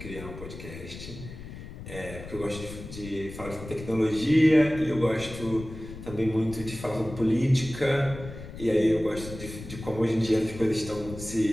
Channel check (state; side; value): noise; left; rumble, 12 dB below the sound